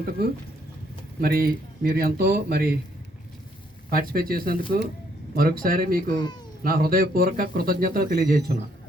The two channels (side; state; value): both; normal; correlation 0.69